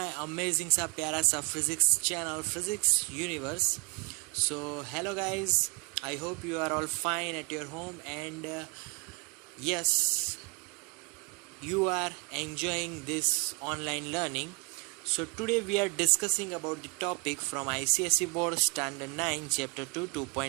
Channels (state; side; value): quieter; left; 33.1 dB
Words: amazing सा प्यारा सा physics channel, Physics Universe. So hello guys, I hope you are all fine at your home and yes, you are enjoying this online learning. So today we are discussing about the topic from ICSE Board Standard 9 Chapter 2